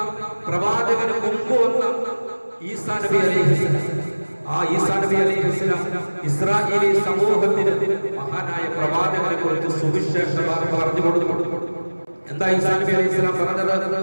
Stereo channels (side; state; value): both; inverted; correlation -1.00